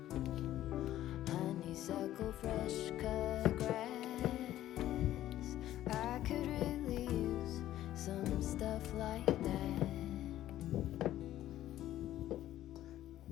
honeysuckle, fresh cut grass. I could really use some stuff like that.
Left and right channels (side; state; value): right; quieter; 13.3 dB